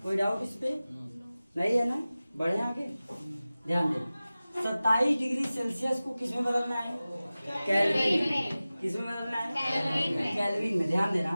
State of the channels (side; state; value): both; inverted; correlation -0.97